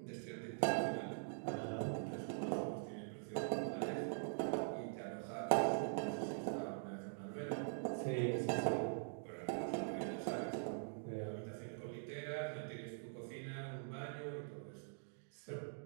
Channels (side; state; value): left; silent; digital silence